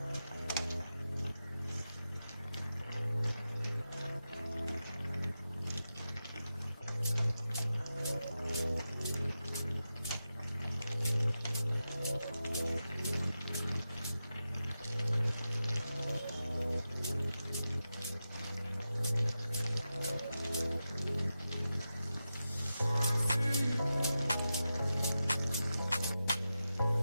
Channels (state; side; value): inverted; both; correlation -0.91